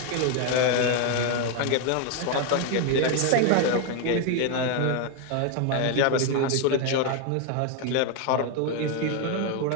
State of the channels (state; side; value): different; both; correlation 0.01